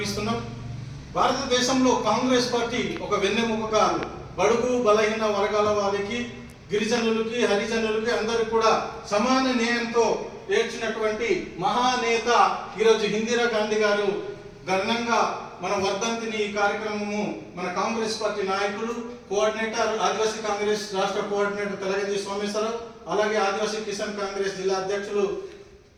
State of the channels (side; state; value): both; identical; correlation 1.00